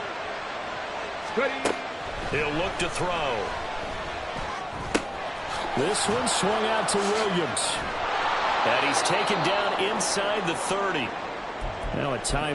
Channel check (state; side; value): identical; both; correlation 1.00